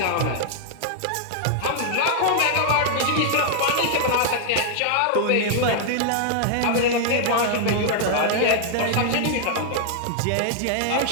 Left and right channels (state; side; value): different; both; correlation 0.00